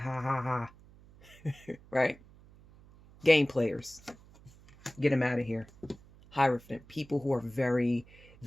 ha ha. Right? Game players. Get them out of here. Hierophant. People who are very,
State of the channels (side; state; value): right; noise; hum, 24 dB below the sound